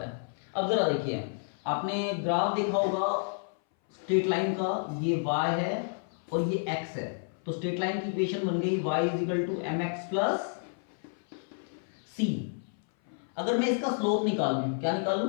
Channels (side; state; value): right; silent; 58 dB below the other